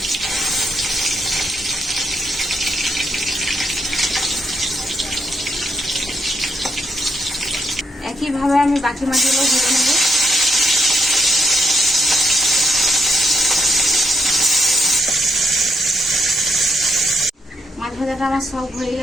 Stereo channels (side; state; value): both; normal; correlation 0.78